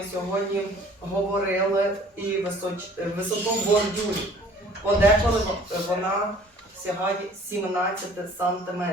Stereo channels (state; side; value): normal; both; correlation 0.52